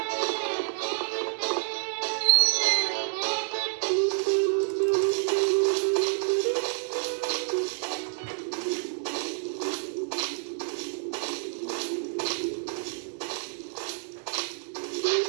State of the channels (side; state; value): left; silent; 59 dB below the other